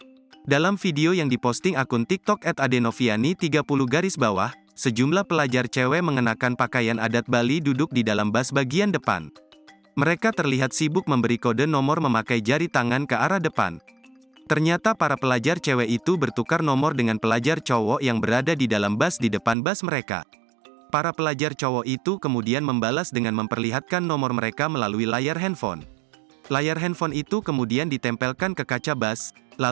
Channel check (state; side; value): drops out; left; at 19.6 s